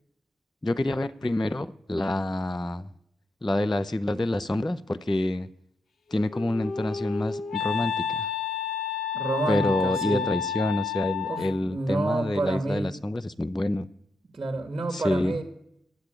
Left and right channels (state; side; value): normal; both; correlation 0.83